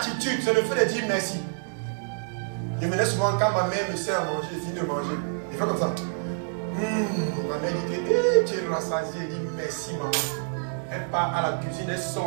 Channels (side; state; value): left; silent; digital silence